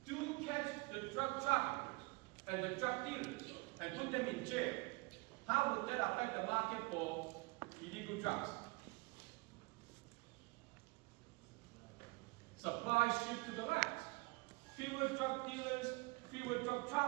do catch the drug traffickers and the drug dealers and put them in jail, how would that affect the market for illegal drugs? Supply shift to the land. Fewer drug dealers, fewer drug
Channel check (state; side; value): quieter; left; 27.2 dB